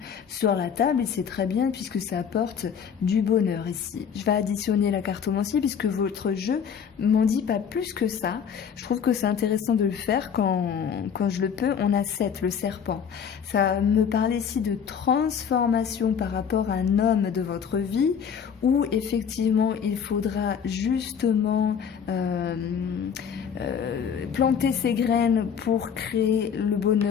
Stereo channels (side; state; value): right; quieter; 7.4 dB